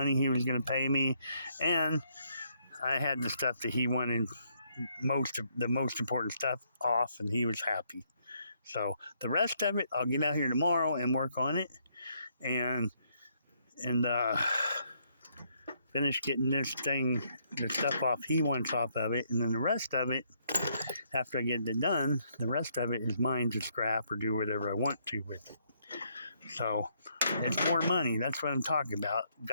he was going to pay me, and I had the stuff that he wanted, the most important stuff off, and he was happy. So the rest of it, I'll get out here tomorrow and work on it, and finish getting the stuff off he wants off of it, and then the rest of it, after I get it done, the rest of it is mine to scrap or do whatever I want to with it. So it's more money. That's what I'm talking about.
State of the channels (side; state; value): both; inverted; correlation -0.72